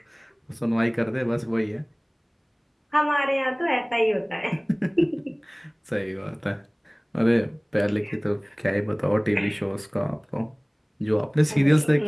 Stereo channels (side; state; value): both; identical; correlation 1.00